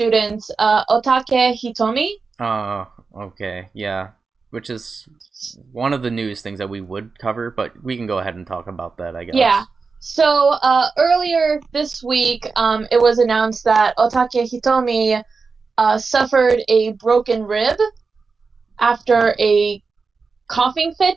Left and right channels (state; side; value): quieter; left; 4.6 dB